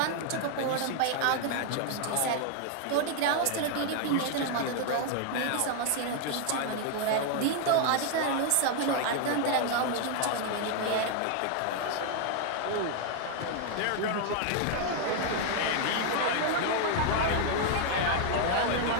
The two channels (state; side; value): different; both; correlation 0.00